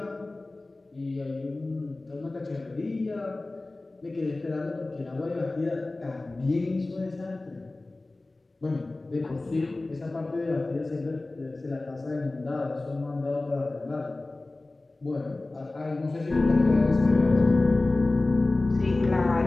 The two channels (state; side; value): quieter; right; 3.0 dB